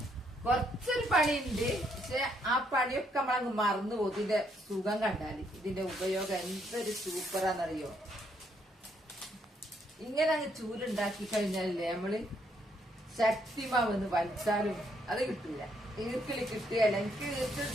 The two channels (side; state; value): both; normal; correlation 0.72